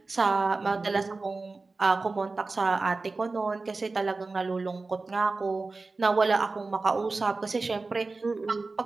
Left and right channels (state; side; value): quieter; left; 3.7 dB